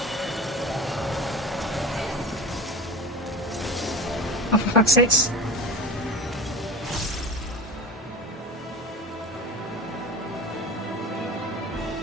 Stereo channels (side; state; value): both; normal; correlation 0.32